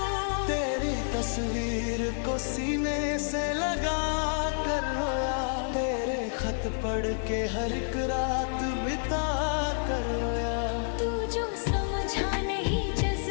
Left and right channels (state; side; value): silent; right; digital silence